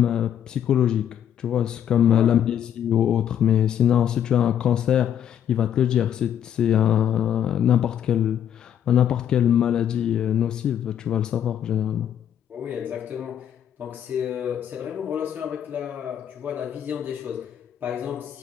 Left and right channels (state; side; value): quieter; right; 9.7 dB